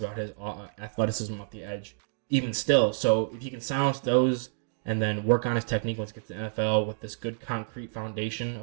his athleticism off the edge, even still. So if he can silence those and then work on his technique once he gets to the NFL with this good concrete foundation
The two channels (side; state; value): left; silent; digital silence